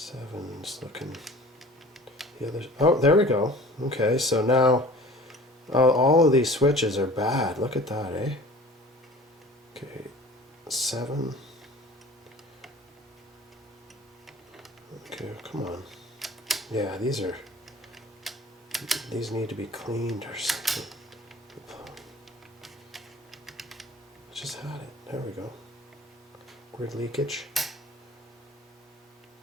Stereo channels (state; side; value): normal; both; correlation 0.44